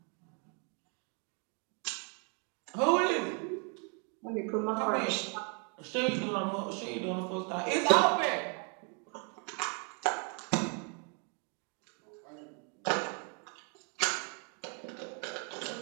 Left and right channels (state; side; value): quieter; left; 38.0 dB